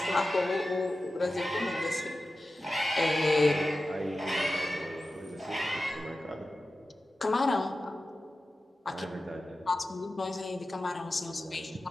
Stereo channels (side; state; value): both; normal; correlation 0.94